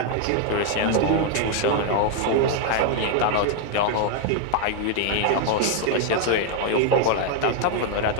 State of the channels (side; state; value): both; different; correlation 0.01